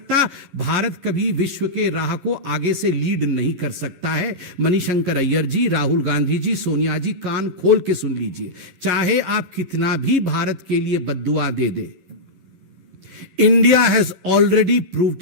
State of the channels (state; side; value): late; left; 11 ms